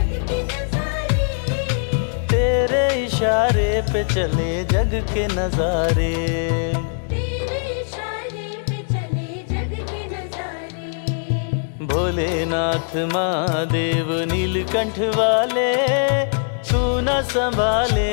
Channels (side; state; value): right; silent; 65 dB below the other